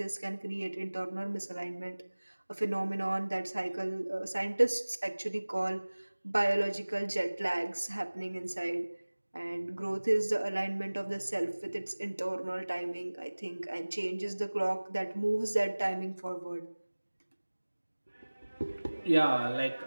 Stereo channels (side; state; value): both; inverted; correlation -1.00